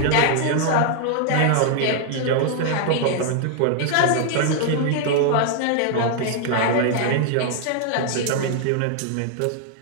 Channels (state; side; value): different; both; correlation 0.00